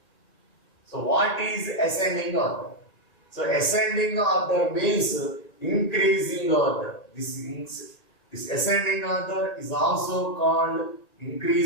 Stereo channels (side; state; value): right; late; 1.8 ms